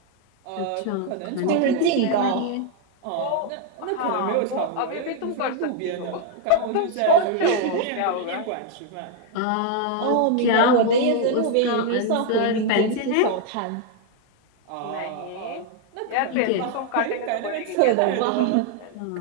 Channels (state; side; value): different; both; correlation 0.00